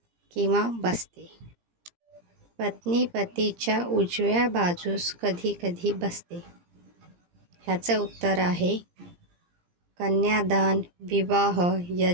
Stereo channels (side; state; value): left; late; 17 ms